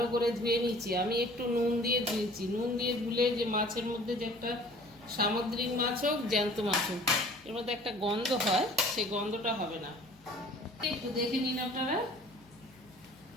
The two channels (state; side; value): noise; left; hum, 28 dB below the sound